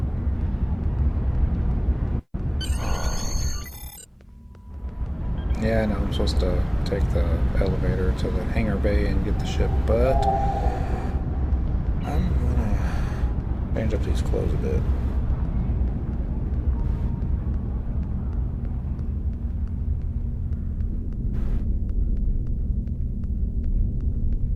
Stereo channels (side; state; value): both; identical; correlation 1.00